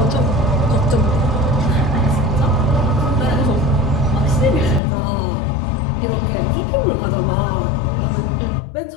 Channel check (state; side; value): drops out; right; at 4.8 s